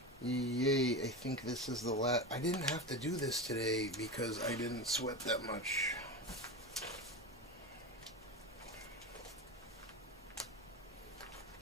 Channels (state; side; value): normal; both; correlation 0.22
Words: Yay, I think this is the last. I didn't have to do this today because I didn't sweat that much.